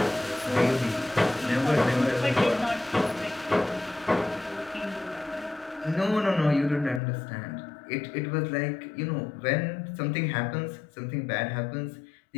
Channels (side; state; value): right; drops out; at 7.0 s